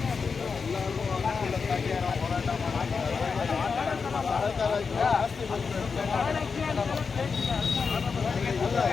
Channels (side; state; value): right; quieter; 5.3 dB